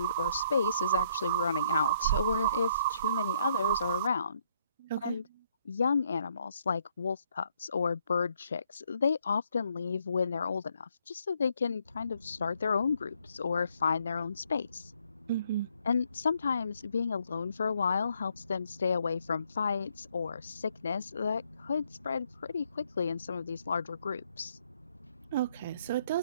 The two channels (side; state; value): both; inverted; correlation -0.70